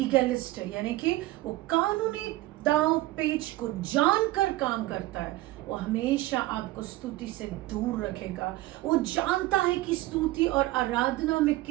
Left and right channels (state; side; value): quieter; left; 18.0 dB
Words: है, यानी कि वो कानूनी दांव पेच को जानकर काम करता है। वो हमेशा आपको स्तुति से दूर रखेगा। वो जानता है कि स्तुति और आराधना में